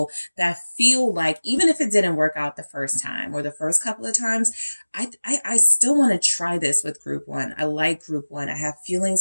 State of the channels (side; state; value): both; inverted; correlation -1.00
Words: that feel like, even if it didn't work out the first time or the first couple of times, I still want to try this with Group 1. I like Group 1. I have